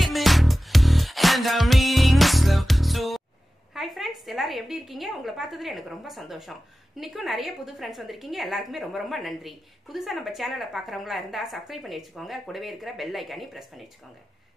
and I'm reading it slow. So Hi friends, எல்லாரும் எப்படி இருக்கீங்க? உங்களை பார்த்ததுல எனக்கு ரொம்ப சந்தோஷம். இன்னைக்கும் நிறைய புது ஃப்ரெண்ட்ஸ் வந்திருக்கீங்க. எல்லாருக்குமே ரொம்ப ரொம்ப நன்றி. புதுசா நம்ம சேனலை பார்க்குறவங்களா இருந்தா சப்ஸ்கிரைப் பண்ணி வச்சுக்கோங்க. கூடவே இருக்கிற பெல் ஐகானை பிரஸ் பண்ணி வச்சுக்கோங்க.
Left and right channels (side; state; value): both; normal; correlation 0.95